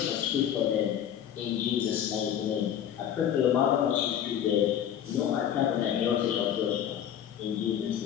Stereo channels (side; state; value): right; quieter; 9.8 dB